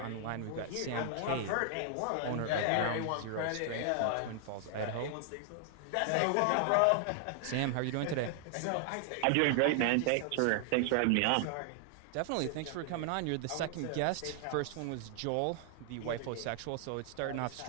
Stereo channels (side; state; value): both; different; correlation 0.00